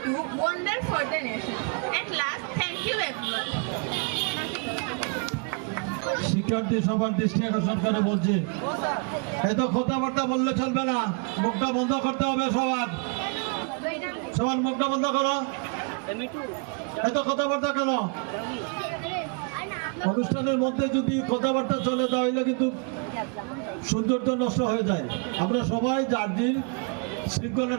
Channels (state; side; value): quieter; left; 35.7 dB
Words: do wonder for the nation. At last, thank you everyone. শিক্ষার্থী সবার দৃষ্টি আকর্ষণ করে বলছি, এত কথাবার্তা বললে চলবে না, মুখটা বন্ধ করতে হবে সবার। সবার মুখটা বন্ধ করো। এত কথাবার্তা কেন? অনুষ্ঠানের মধ্যে যদি কথাবার্তা চলে তাহলে কিন্তু সৌন্দর্য নষ্ট হয়ে যায়। আমরা সবাই যার দিন